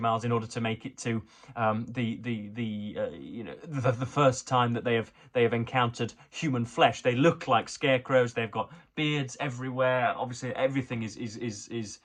miles in order to make it to the first time that they have encountered human flesh. They look like scarecrows. They've got beards everywhere. Obviously, everything is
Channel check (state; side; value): identical; both; correlation 1.00